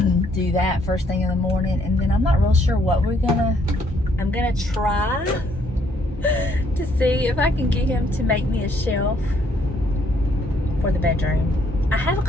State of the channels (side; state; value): both; normal; correlation 0.68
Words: do that first thing in the morning. And then I'm not real sure what I'm gonna try to see if I can get him to make me a shelf for the bedroom. I have a